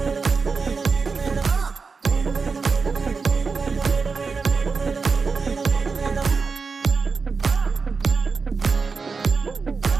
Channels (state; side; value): quieter; left; 4.8 dB